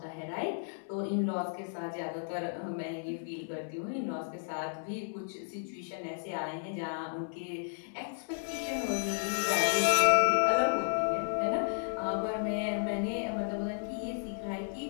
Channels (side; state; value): right; silent; 56 dB below the other